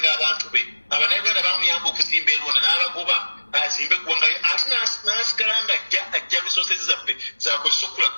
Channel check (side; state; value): both; inverted; correlation -1.00